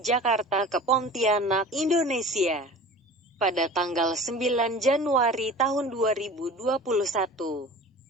Jakarta ke Pontianak, Indonesia, pada tanggal 9 Januari tahun 2021.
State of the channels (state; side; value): normal; both; correlation 0.39